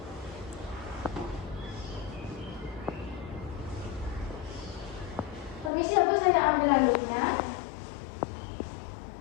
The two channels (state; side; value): drops out; right; at 5.7 s